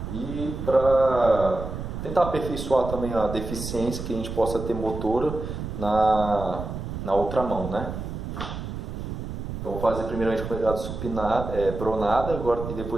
e para tentar aperfeiçoar também a deficiência que a gente possa ter motora na outra mão, né? Então vou fazer primeiramente com pegada supinada, pronada agora, e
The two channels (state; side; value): noise; right; rumble, 7 dB below the sound